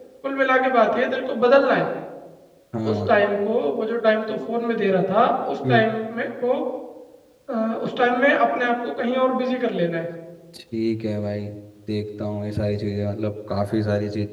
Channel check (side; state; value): both; identical; correlation 1.00